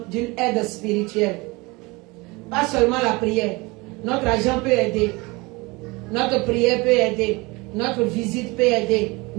d'une aide spirituelle. Pas seulement la prière. Notre argent peut aider. Notre prière peut aider. Notre visite peut aider.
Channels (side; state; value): left; quieter; 24.6 dB